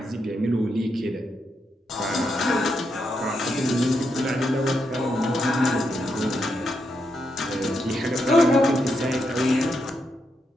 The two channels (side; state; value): both; normal; correlation 0.82